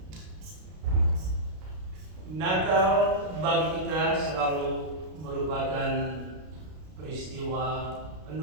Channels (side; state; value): left; late; 33 ms